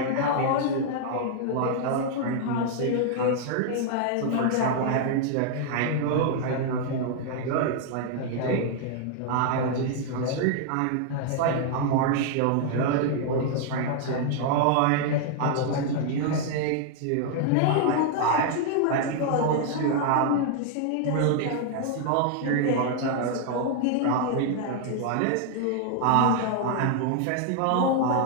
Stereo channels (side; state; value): both; different; correlation 0.00